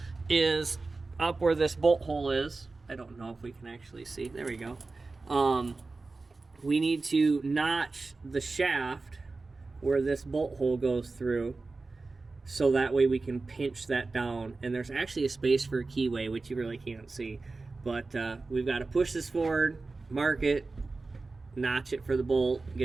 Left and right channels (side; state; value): left; quieter; 3.7 dB